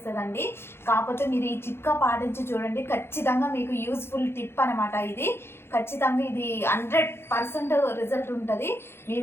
కాకపోతే మీరు ఈ చిట్కా పాటించి చూడండి. ఖచ్చితంగా మీకు యూస్ఫుల్ టిప్ అనమాట ఇది. ఖచ్చితంగా ఇది 100% రిజల్ట్ ఉంటుంది.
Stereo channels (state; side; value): late; right; 0.12 ms